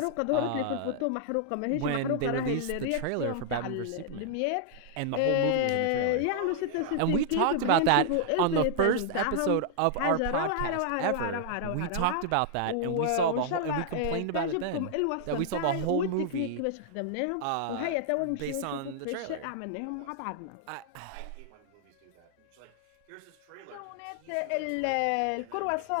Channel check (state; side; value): different; both; correlation -0.01